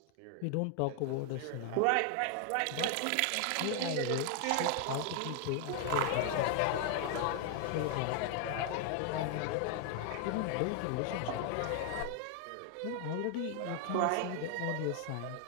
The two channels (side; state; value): both; different; correlation 0.00